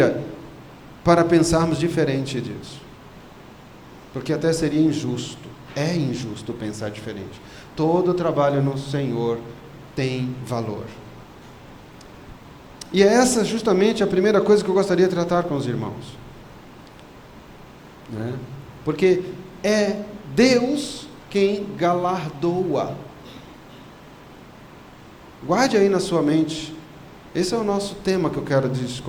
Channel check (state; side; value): identical; both; correlation 1.00